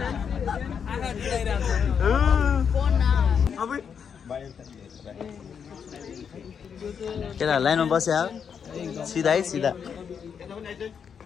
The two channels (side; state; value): right; quieter; 7.1 dB